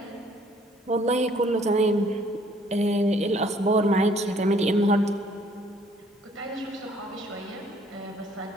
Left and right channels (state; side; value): normal; both; correlation 0.61